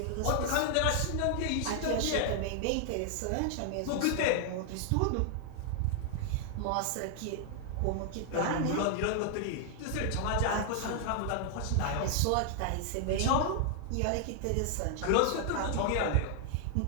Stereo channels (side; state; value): both; different; correlation 0.00